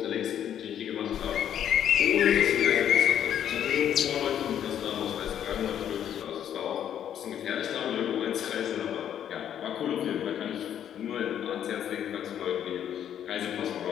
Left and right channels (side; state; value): right; quieter; 9.8 dB